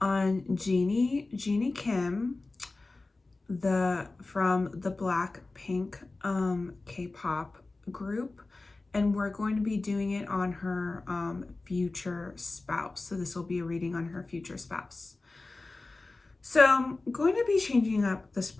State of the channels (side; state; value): right; quieter; 3.3 dB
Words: Jeannie Kim, from the Blackpink K-pop group, and we're going to be doing it on her future spouse. So this will be a reading on her future spouse. So I'm going to be changing up the